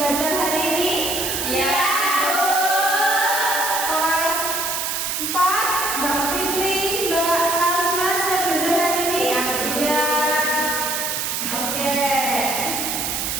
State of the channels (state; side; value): noise; right; hiss, 1 dB below the sound